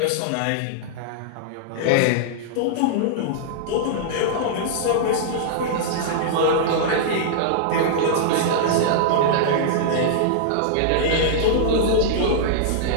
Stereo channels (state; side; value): different; both; correlation -0.02